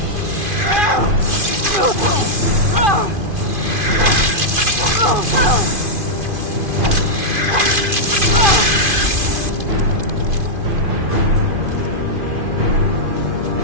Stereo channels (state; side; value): late; left; 2.5 ms